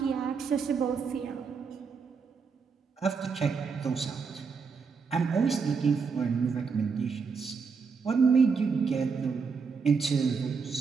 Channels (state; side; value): quieter; left; 5.4 dB